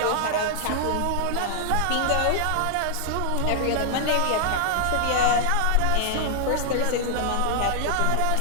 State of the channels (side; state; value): both; different; correlation -0.01